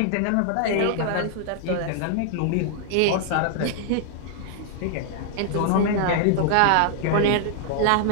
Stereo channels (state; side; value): different; both; correlation 0.00